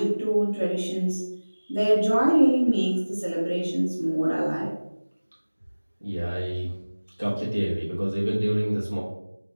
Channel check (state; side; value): inverted; both; correlation -1.00